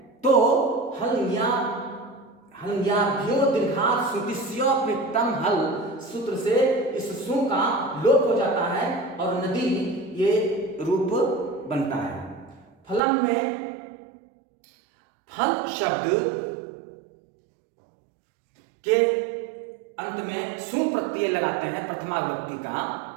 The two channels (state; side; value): drops out; left; at 13.0 s